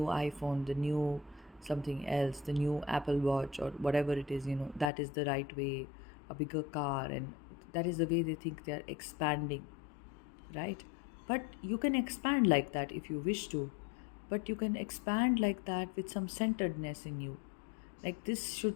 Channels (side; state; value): right; drops out; at 4.9 s